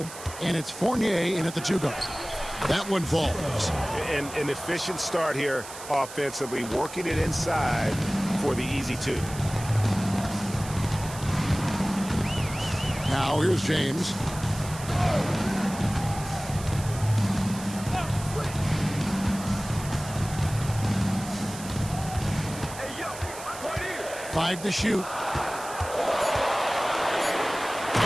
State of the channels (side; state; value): right; noise; hiss, 13 dB below the sound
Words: and it's Fournier in at the 2 guard. That one falls. And an efficient start here offensively, working it inside for the easy 2. Now here's James. Five to shoot.